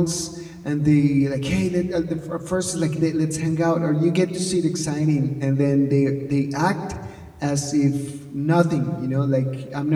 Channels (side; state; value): both; identical; correlation 1.00